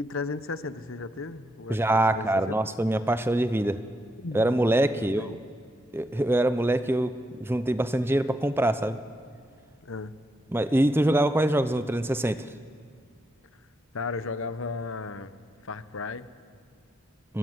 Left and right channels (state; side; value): normal; both; correlation 0.81